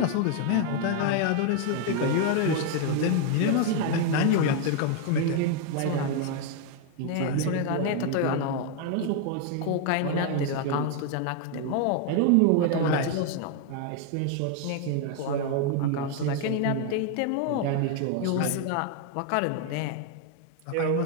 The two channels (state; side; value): different; both; correlation 0.00